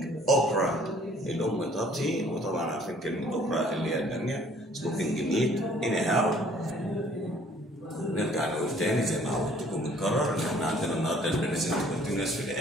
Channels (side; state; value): both; normal; correlation 0.57